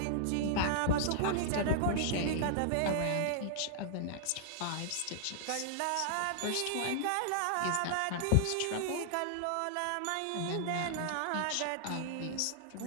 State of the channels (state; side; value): different; both; correlation -0.01